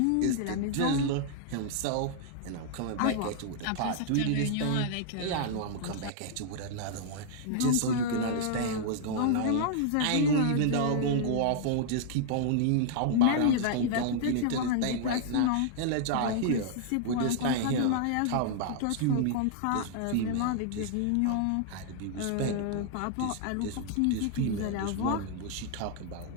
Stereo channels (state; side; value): different; both; correlation -0.01